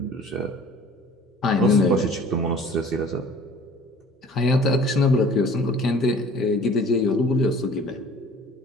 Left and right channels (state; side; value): normal; both; correlation 0.48